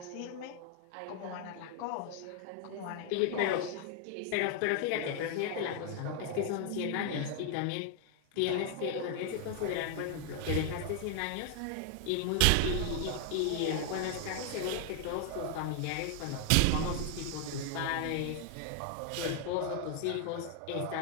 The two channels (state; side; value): different; both; correlation 0.00